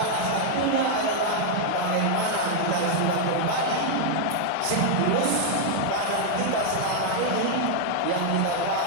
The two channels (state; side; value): different; both; correlation -0.01